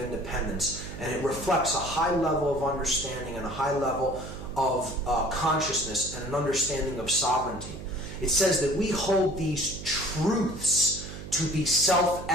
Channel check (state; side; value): noise; right; hum, 11 dB below the sound